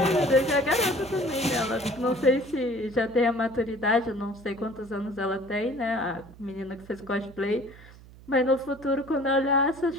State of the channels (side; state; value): right; noise; hum, 21 dB below the sound